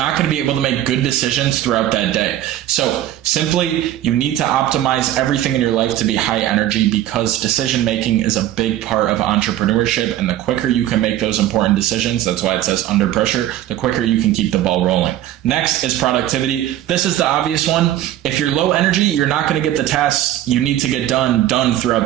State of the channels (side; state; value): left; quieter; 12.9 dB